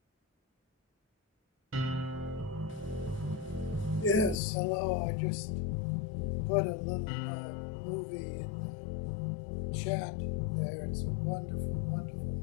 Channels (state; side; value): drops out; right; at 4.4 s